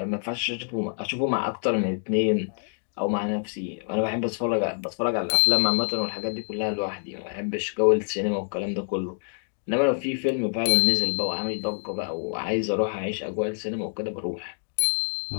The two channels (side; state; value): right; silent; digital silence